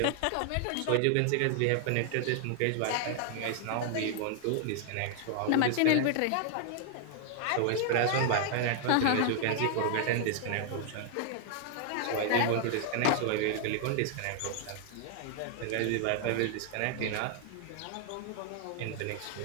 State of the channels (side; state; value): both; different; correlation 0.00